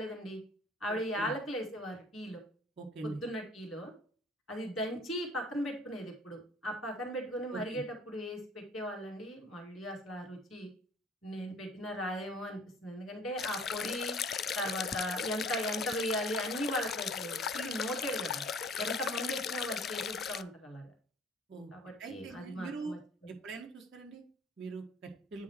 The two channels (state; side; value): normal; both; correlation 0.51